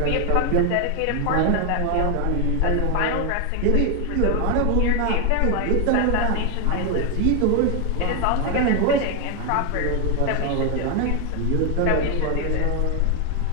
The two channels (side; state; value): both; different; correlation 0.01